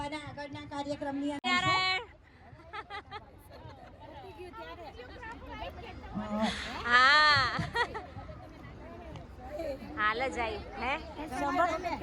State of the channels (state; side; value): identical; both; correlation 1.00